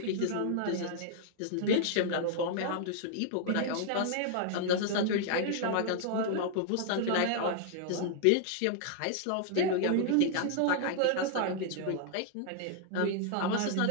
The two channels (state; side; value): different; both; correlation -0.01